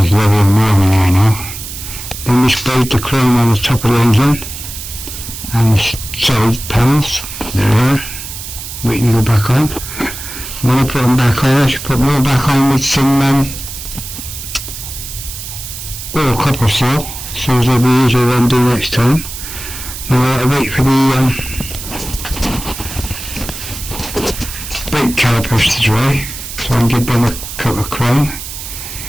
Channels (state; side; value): noise; right; hiss, 10 dB below the sound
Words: it's lovely and warm in here now. Then we sprayed the chrome on the top of the engine. And the side panels. They're there. Waiting to go back on. When I put them back on, I should put them all back on with some oil copper seal. So they'll be easier to undo next time. Now I have to wait for the brake calipers to dry, so I can give them a coat of chrome,